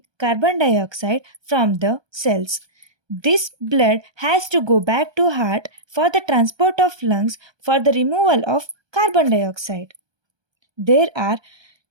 carbon dioxide from the cells. This blood has to go back to heart for the transport of lungs for the removal of carbon dioxide. There are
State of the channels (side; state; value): left; late; 1.2 ms